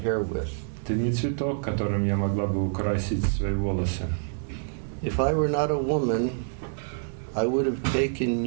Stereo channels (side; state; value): left; silent; digital silence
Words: with. Ты не цветок, которым я могла бы украсить свои волосы. If I were not a woman, I would have taken